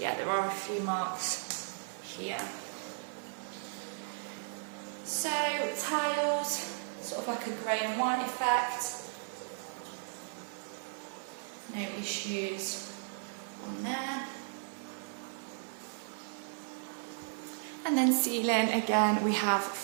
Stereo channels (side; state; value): left; silent; 54 dB below the other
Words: there are a few marks here. So tiles, sort of like a grey and white effect. No issues on there. And then ceiling, again, we have